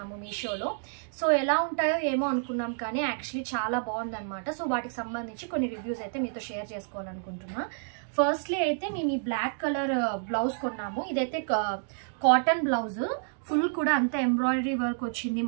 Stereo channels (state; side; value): silent; left; digital silence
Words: మీషోలో. సో ఎలా ఉంటాయో ఏమో అనుకున్నాం, కానీ యాక్చువల్లీ చాలా బాగుందన్నమాట. సో వాటికి సంబంధించి కొన్ని రివ్యూస్ అయితే మీతో షేర్ చేసుకోవాలనుకుంటున్నా. ఫస్ట్లీ అయితే మేము ఈ బ్లాక్ కలర్ బ్లౌజ్ కొన్నాము. ఇదైతే కాటన్ బ్లౌజ్, ఫుల్ కూడా అంతా ఎంబ్రాయిడరీ వర్క్ వచ్చింది,